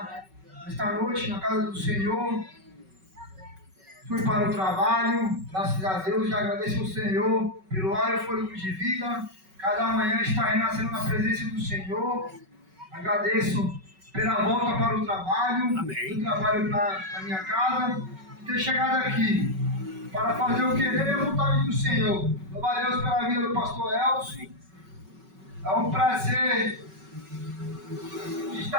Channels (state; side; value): late; left; 5.3 ms